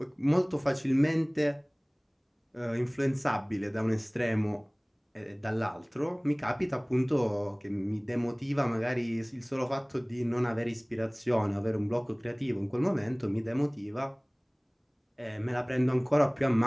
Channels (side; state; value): both; identical; correlation 1.00